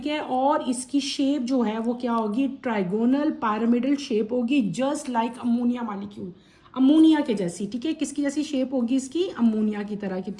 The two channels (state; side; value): identical; both; correlation 1.00